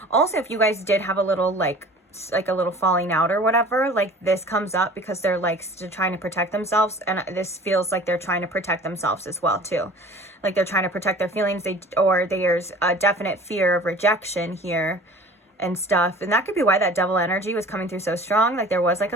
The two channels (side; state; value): both; normal; correlation 0.44